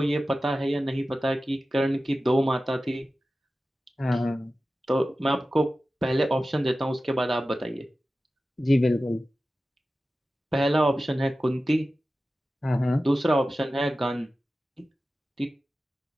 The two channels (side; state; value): both; normal; correlation 0.95